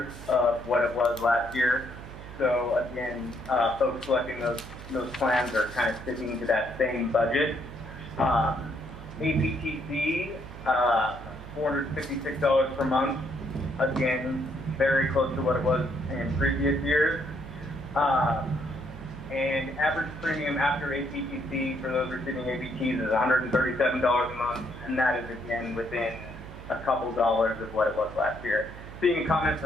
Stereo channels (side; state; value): right; noise; hum, 14 dB below the sound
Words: of what it was last year. So again, folks selecting those plans are kind of sticking to that same budget. APTC, $456 per month. Again, very close to what it was in previous years. And average premium after APTC for those receiving APTs is $137 a month, and that is again within a couple dollars of what it was last year. Seeing a comment